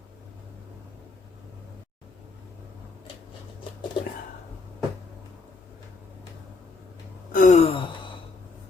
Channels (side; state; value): right; quieter; 4.0 dB